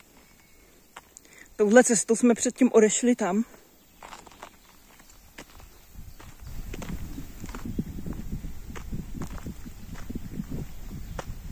Touhle cestou jsme předtím odešli tam.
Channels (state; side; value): identical; both; correlation 1.00